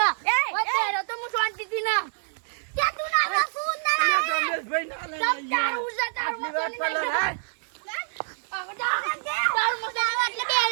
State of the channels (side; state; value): left; silent; 61 dB below the other